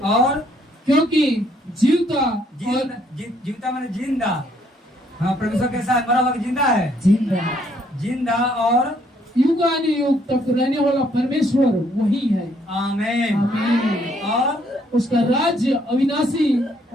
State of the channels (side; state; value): both; normal; correlation 0.68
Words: और क्योंकि जीवता माने जिंदा। हाँ, परमेश्वर के साथ मरा हुआ जिंदा है। जिंदा और युगानुयुग तक रहने वाला परमेश्वर वही है। आमीन। आमीन। और उसका राज्य अविनाशी